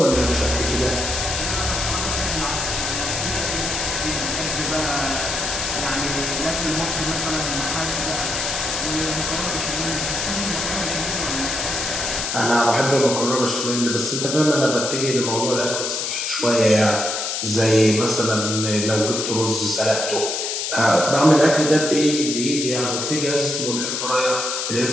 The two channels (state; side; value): noise; left; hiss, 2 dB below the sound